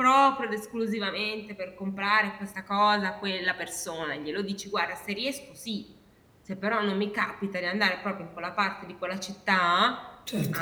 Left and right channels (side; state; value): both; identical; correlation 1.00